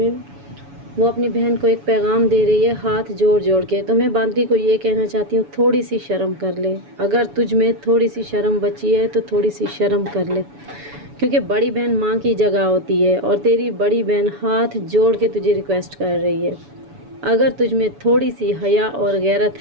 वो अपनी बहन को एक पैगाम दे रही है हाथ जोड़ जोड़ के। तो मैं बांदी को ये कहना चाहती हूँ, थोड़ी सी शर्म कर ले। अगर तुझ में थोड़ी सी शर्म बची है तो थोड़ी सी शर्म कर ले, क्योंकि बड़ी बहन माँ की जगह होती है और तेरी बड़ी बहन हाथ जोड़ के तुझे रिक्वेस्ट कर रही है। अगर तुझ में थोड़ी सी हया और गैरत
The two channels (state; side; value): late; left; 7.0 ms